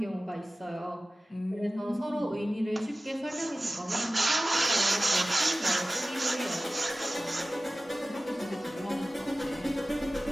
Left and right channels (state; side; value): normal; both; correlation 0.96